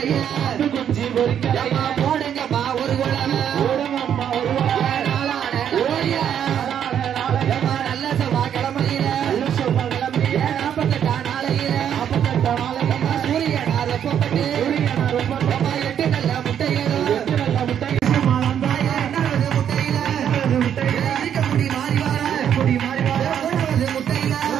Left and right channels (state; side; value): quieter; left; 9.1 dB